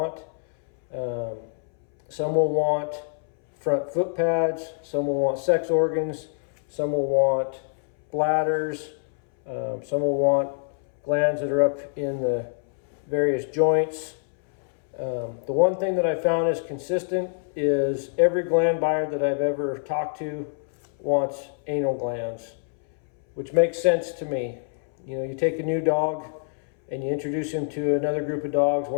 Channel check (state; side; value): silent; right; 62 dB below the other